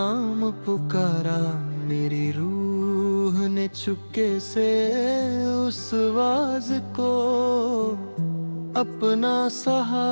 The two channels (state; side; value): inverted; both; correlation -1.00